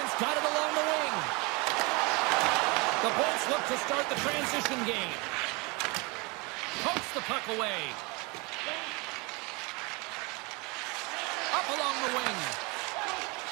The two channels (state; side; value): quieter; left; 27.9 dB